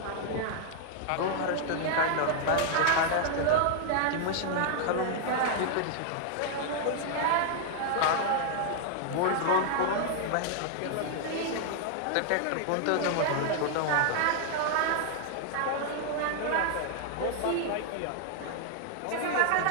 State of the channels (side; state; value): both; different; correlation 0.00